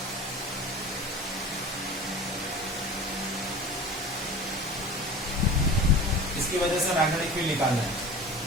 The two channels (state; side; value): normal; both; correlation 0.35